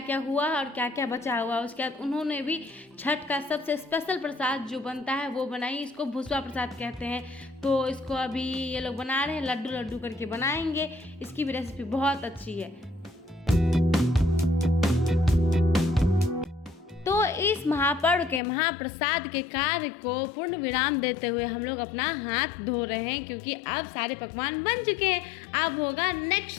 हुआ और क्या क्या बचा हुआ। उसके बाद उन्होंने भी छठ का सबसे स्पेशल प्रसाद जो बनता है वो बनाई। इसको भुसवा प्रसाद कहते हैं। तो इसको अभी ये लोग बना रहे हैं, लड्डू लड्डू करके बनाएंगे। इसकी भी रेसिपी बहुत अच्छी है। तो इस महापर्व के महाप्रसाद के कार्य को पूर्ण विराम देते हुए हम लोग अपना हाथ धो रहे हैं, क्योंकि अब सारे पकवान बन चुके हैं। अब होगा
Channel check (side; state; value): right; drops out; at 18.4 s